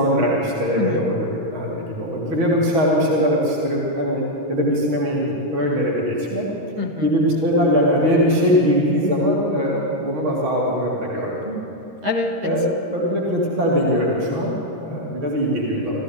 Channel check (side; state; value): left; late; 13 ms